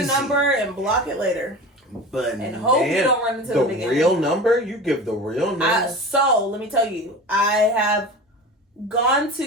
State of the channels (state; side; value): normal; both; correlation 0.32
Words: the number and block it later. But and hope you don't run into them again. The real number? You give the real number? So, let me tell you, I have gone